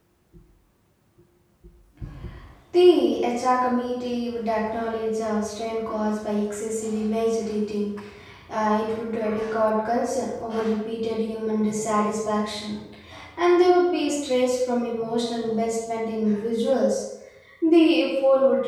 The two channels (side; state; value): both; identical; correlation 1.00